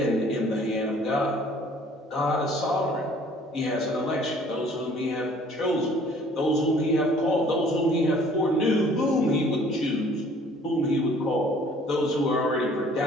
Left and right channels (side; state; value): both; normal; correlation 0.55